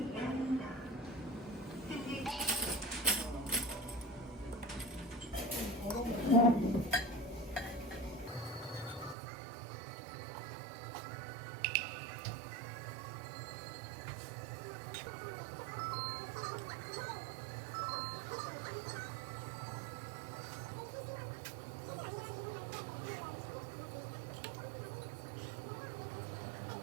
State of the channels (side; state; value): left; drops out; at 9.2 s